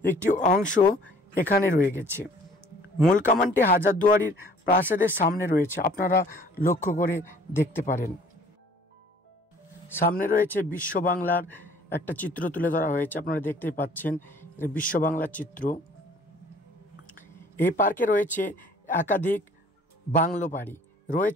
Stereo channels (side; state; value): both; normal; correlation 0.54